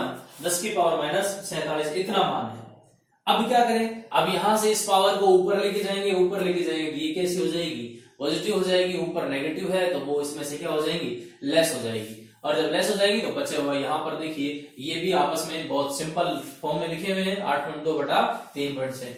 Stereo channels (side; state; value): both; identical; correlation 1.00